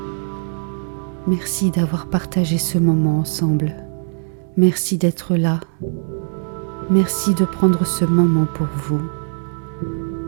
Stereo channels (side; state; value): left; silent; 60 dB below the other